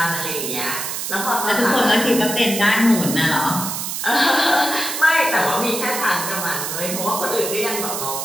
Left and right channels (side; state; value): right; noise; hiss, 4 dB below the sound